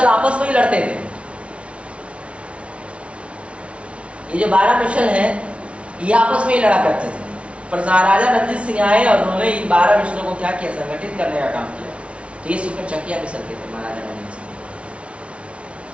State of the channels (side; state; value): left; late; 0.061 ms